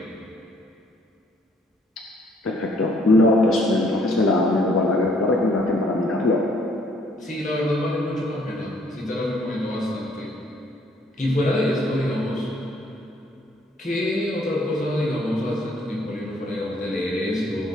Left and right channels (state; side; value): normal; both; correlation 0.64